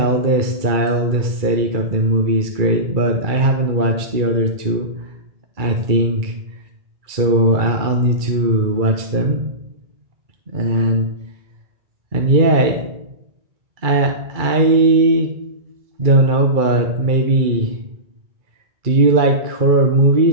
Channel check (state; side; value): late; left; 2.3 ms